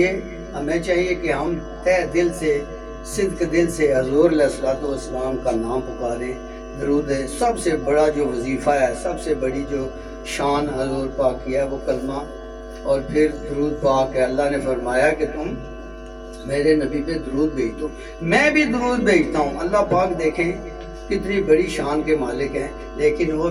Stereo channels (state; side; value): identical; both; correlation 1.00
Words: ہمیں چاہیے کہ ہم تہ دل سے، صدق دل سے حضور علیہ الصلوۃ والسلام کا نام پکاریں، درود ہے. سب سے بڑا جو وظیفہ ہے, سب سے بڑی جو شان حضور پاک کی ہے وہ کلمہ اور پھر درود پاک ہے. اللہ نے فرمایا کہ تم میرے نبی پہ درود بھیج دو, میں بھی درود بھیجتا ہوں. اللہ پاک دیکھیں کتنی بڑی شان کے مالک ہیں, لیکن وہ